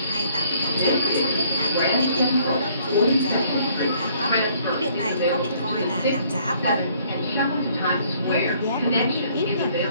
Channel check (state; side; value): inverted; both; correlation -0.62